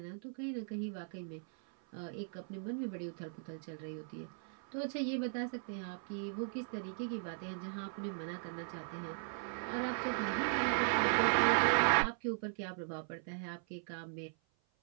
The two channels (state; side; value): silent; left; 52 dB below the other